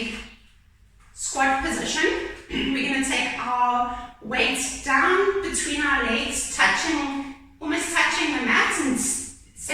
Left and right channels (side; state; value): both; identical; correlation 1.00